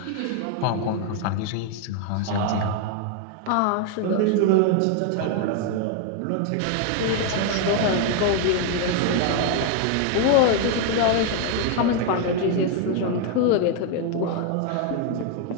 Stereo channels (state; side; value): different; both; correlation 0.01